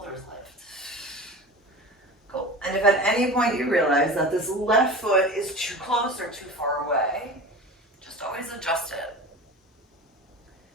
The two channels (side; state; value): both; normal; correlation 0.33